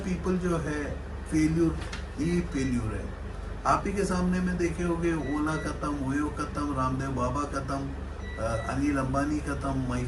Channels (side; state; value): both; identical; correlation 1.00